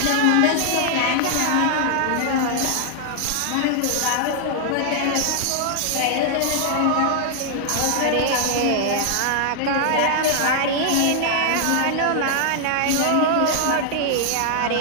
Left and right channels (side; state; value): both; different; correlation 0.00